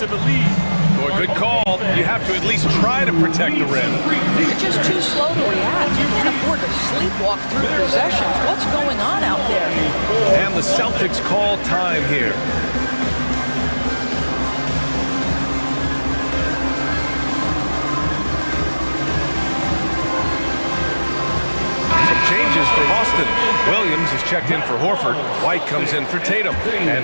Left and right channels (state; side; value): inverted; both; correlation -1.00